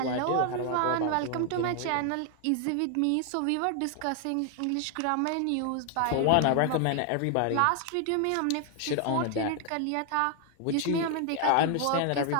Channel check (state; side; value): different; both; correlation 0.00